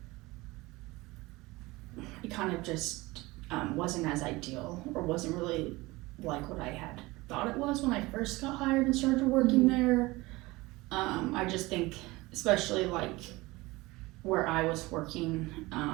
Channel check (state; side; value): quieter; left; 21.3 dB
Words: it kind of just wasn't as ideal, or wasn't really like what I had thought it was when I first got hired and started working there. I just think, especially like where I was working,